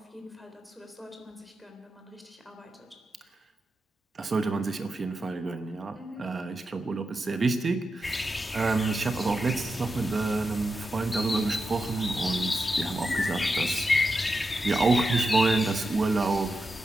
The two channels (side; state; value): both; normal; correlation 0.89